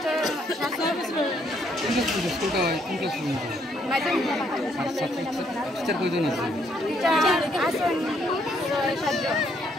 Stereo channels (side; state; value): both; normal; correlation 0.70